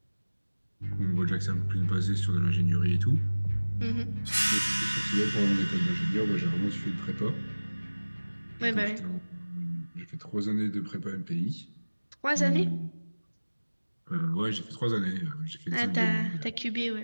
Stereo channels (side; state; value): both; inverted; correlation -1.00